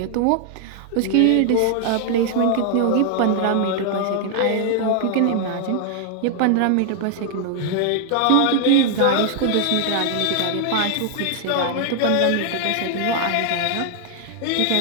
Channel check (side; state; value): both; different; correlation 0.00